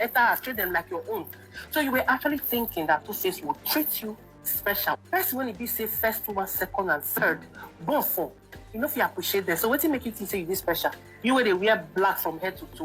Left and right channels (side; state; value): both; identical; correlation 1.00